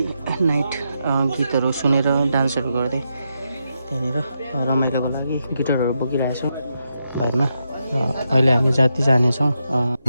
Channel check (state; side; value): inverted; both; correlation -0.84